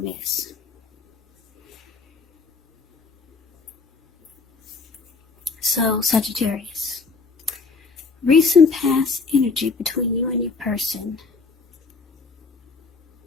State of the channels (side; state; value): right; quieter; 4.4 dB